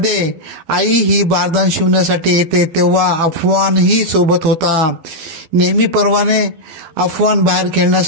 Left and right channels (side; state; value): left; late; 12 ms